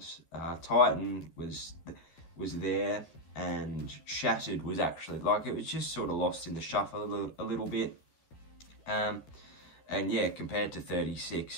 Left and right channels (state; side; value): late; right; 12 ms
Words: Titan was there, and Shattered was actually, like, it was just sort of lost in the shuffle a little bit. And yeah, compared to